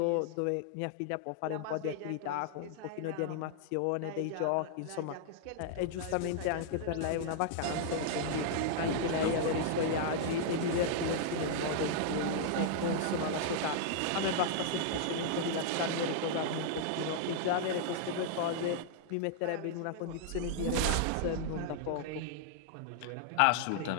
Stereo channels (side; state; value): both; different; correlation -0.01